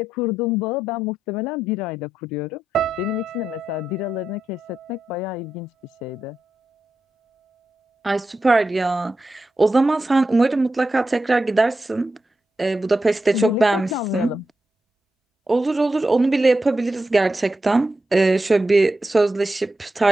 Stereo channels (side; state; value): both; normal; correlation 0.88